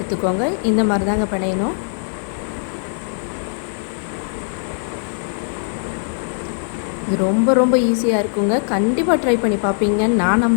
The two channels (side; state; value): right; silent; 56 dB below the other